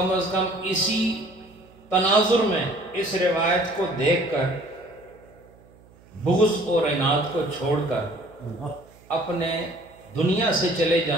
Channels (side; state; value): right; noise; hum, 27 dB below the sound